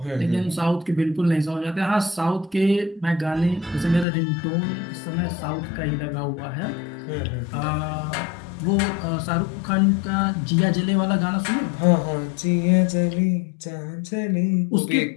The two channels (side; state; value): right; drops out; at 4.0 s